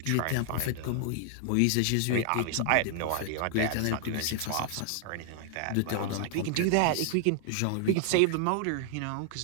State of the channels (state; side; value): different; both; correlation 0.00